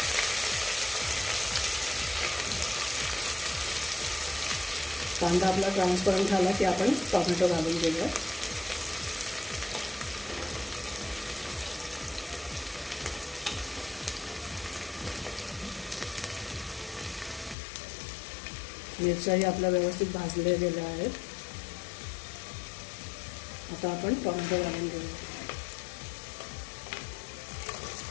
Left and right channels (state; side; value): drops out; right; at 17.6 s